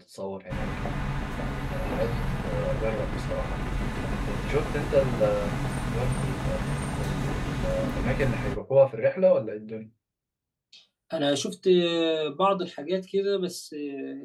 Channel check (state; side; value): identical; both; correlation 1.00